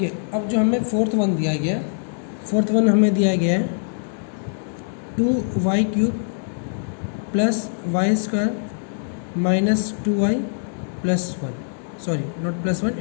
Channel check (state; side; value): silent; right; digital silence